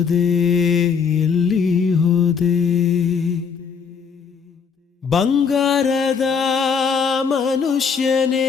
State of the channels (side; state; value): right; quieter; 6.2 dB